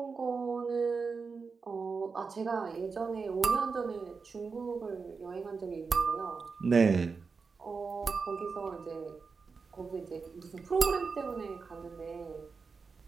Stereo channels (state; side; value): quieter; left; 4.9 dB